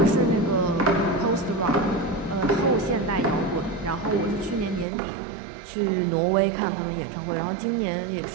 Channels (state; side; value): drops out; left; at 4.9 s